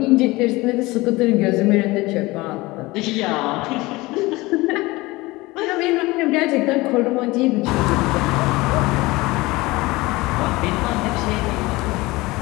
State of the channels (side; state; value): right; quieter; 21.3 dB